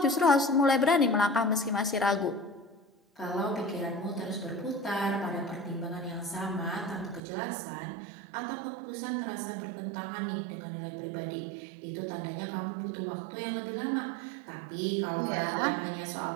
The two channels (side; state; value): left; drops out; at 7.2 s